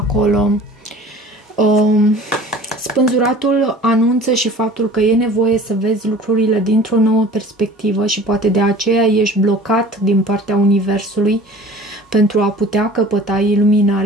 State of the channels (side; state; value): both; normal; correlation 0.45